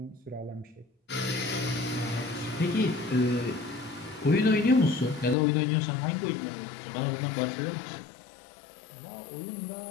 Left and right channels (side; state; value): right; drops out; at 5.4 s